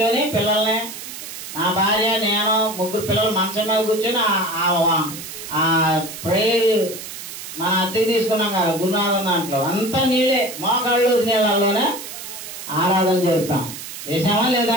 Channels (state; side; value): noise; right; hiss, 11 dB below the sound